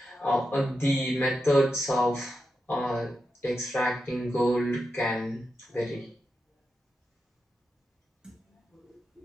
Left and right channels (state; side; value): normal; both; correlation 0.88